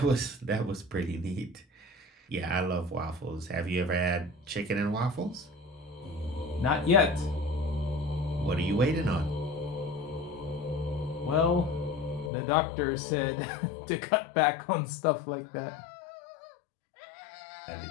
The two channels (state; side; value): drops out; right; at 12.3 s